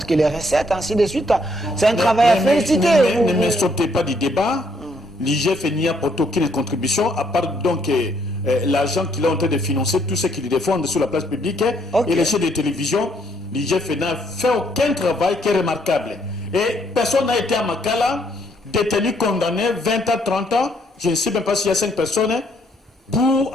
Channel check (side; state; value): both; normal; correlation 0.69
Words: que les recettes, ainsi de suite. C'est un travail à féliciter. Ne me sautez pas du débat. L'IGF n'y apporte aucune contribution, à part donc l'argent qu'il est en train de financer, tout ce qu'il défend sur la place publique et les chaînes de télévision. L'IGF n'a fait aucun travail qui est remarquable. Et personne n'a été à Makala détenu, condamné 20 à 30 ans, je ne sais même pas s'il y a 5 personnes, pour